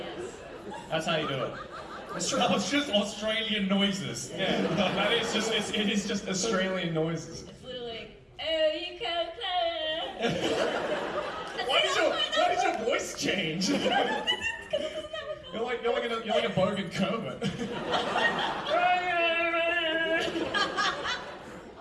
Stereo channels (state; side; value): identical; both; correlation 1.00